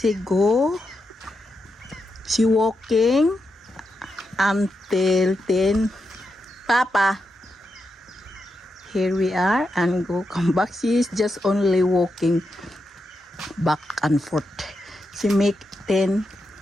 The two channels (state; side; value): normal; both; correlation 0.86